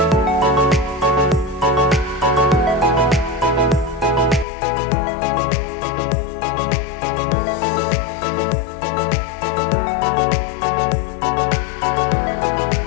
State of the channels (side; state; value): right; drops out; at 4.5 s